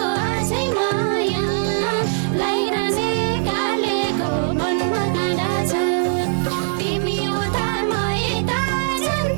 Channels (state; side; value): silent; left; digital silence